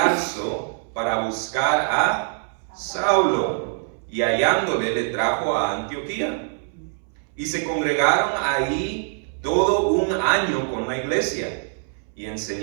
para buscar a Saulo, y hallándole le trajo a Antioquía, y se congregaron ahí todo un año con la iglesia, y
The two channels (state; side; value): silent; left; 63 dB below the other